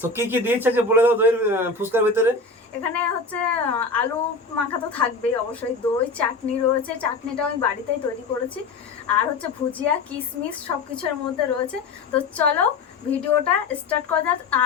তো কি কি দিয়েছে যে বলে দাও দইয়ের ফুচকার ভিতরে। এখানে হচ্ছে আলু মাখা তো থাকবেই অবশ্যই, দই, চাটনি রয়েছে, চাটনিটা আমি বাড়িতেই তৈরি করেছি, আর হচ্ছে ভুজিয়া, কিশমিশ সব কিছুর মধ্যে রয়েছে। তো চলো ভিডিওটা স্টার্ট করা যাক।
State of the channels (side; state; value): right; quieter; 4.0 dB